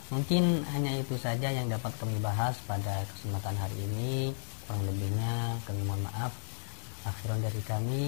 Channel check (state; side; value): silent; right; digital silence